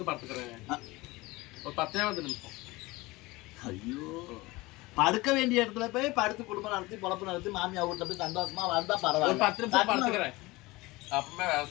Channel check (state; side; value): quieter; right; 21.6 dB